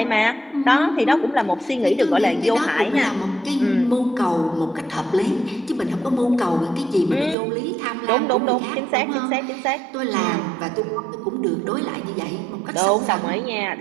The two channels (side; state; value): left; drops out; at 7.4 s